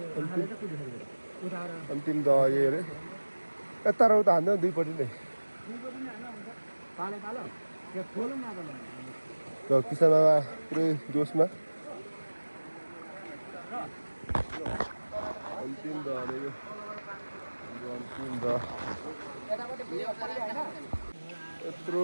अन्तिम दह यही अरे यता र उता हान्दा दुईपट्टि नै र किसान बाबा पुरै जोसमा अन्तिम दह अरे यो हाम्रो अन्तिम दह यत्रो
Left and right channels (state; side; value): inverted; both; correlation -1.00